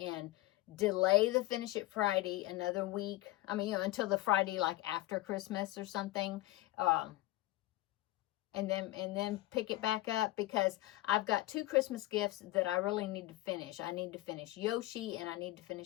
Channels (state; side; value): quieter; right; 17.8 dB